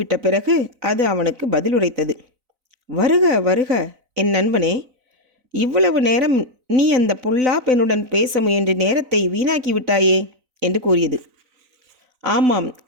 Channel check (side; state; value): left; late; 4.0 ms